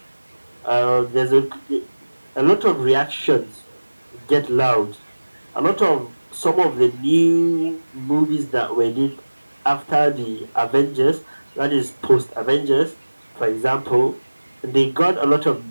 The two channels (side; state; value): both; inverted; correlation -1.00